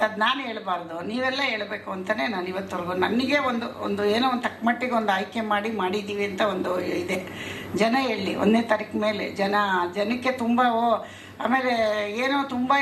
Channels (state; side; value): identical; both; correlation 1.00